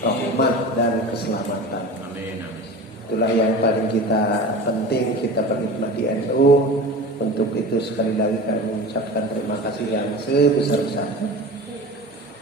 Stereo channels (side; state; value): both; normal; correlation 0.34